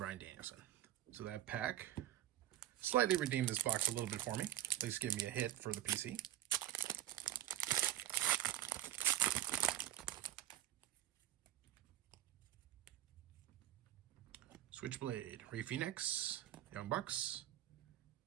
Danielson. So that pack slightly redeemed this box a little bit for me. At least give me a hit for the PC. Switchblade, Ray Phoenix, Young Bucks.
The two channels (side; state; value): left; quieter; 13.0 dB